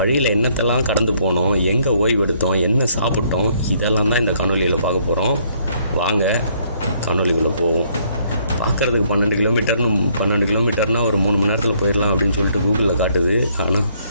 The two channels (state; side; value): inverted; both; correlation -0.67